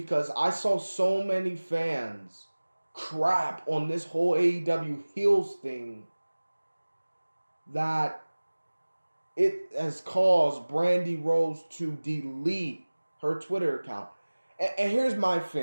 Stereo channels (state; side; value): inverted; both; correlation -1.00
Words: I saw so many fans crap on this whole AEW Heels thing that it has caused Brandi Rhodes to delete her Twitter account. And here's my